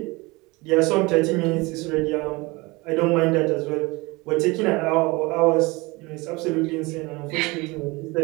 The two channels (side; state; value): left; quieter; 24.1 dB